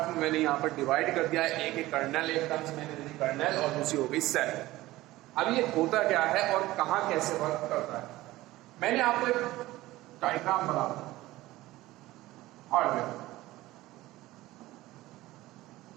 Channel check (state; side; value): quieter; left; 17.5 dB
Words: में मैंने यहाँ पर डिवाइड कर दिया है। एक है कर्नेल, एक टर्म्स मैंने दी कर्नेल, और दूसरी हो गई सेल। अब ये होता क्या है और कहाँ कैसे वर्क करता है, मैंने आपको एक डायग्राम बना दिया। हार्डवेयर,